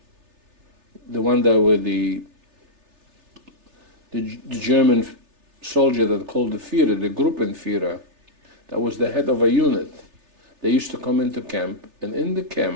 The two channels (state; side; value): late; left; 3.3 ms